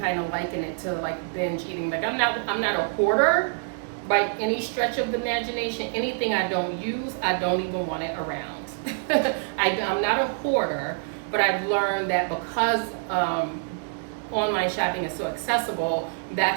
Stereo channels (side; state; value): left; silent; digital silence